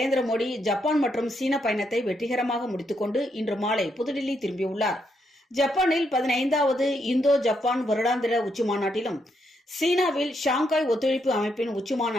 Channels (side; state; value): both; normal; correlation 0.78